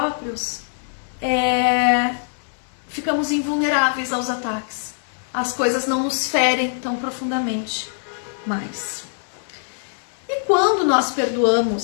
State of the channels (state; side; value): silent; right; digital silence